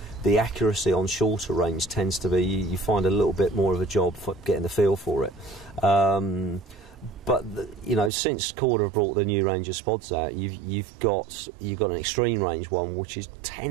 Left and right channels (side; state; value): left; drops out; at 8.1 s